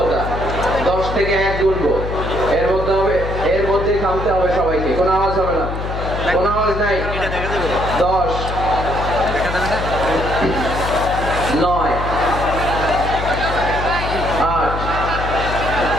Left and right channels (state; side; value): noise; left; hum, 5 dB below the sound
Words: 10 থেকে 1 গুনবো, এর মধ্যে হবে, এর মধ্যেই থামতে হবে সবাইকে। কোনো আওয়াজ হবে না, কোনো আওয়াজ নাই। 10, 9, 8,